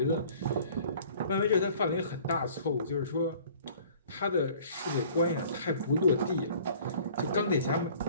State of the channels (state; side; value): inverted; both; correlation -0.51